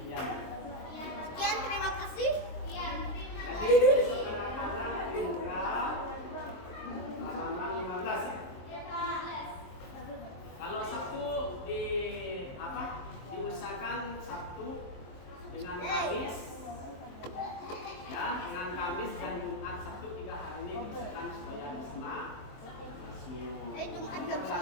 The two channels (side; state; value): right; late; 23 ms